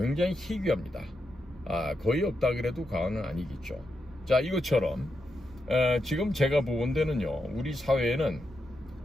희귀합니다. 거의 없다 그래도 과언은 아니겠죠. 자, 이것처럼 지금 제가 보건 데는요, 우리 사회에는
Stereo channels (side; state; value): both; normal; correlation 0.85